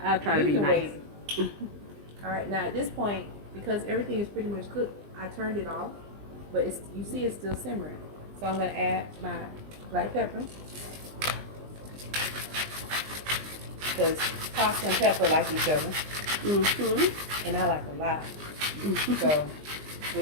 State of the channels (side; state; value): left; late; 20 ms